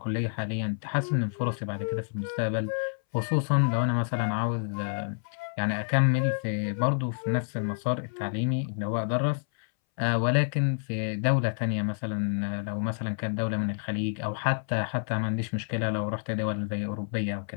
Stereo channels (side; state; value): right; silent; 59 dB below the other